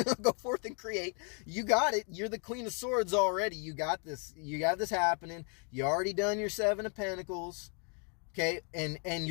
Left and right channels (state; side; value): quieter; right; 38.8 dB